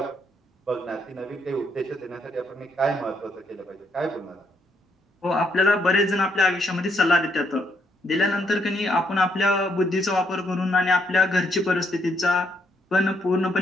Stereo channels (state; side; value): normal; both; correlation 0.74